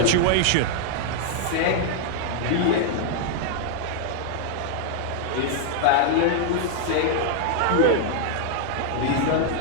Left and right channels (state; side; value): different; both; correlation 0.00